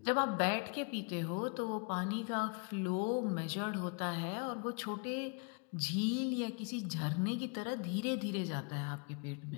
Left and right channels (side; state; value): right; quieter; 35.4 dB